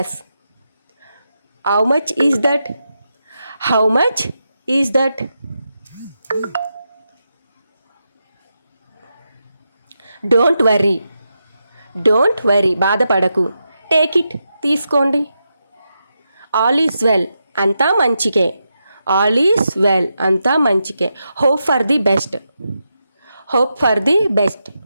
How much is that? How much is that? Don't worry. Don't worry. బాధపడకు. Take it. తీసుకోండి. All is well. అంతా మంచికే. All is well. అంతా మంచికే. Hope for the best. Hope for the best.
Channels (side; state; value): both; inverted; correlation -0.86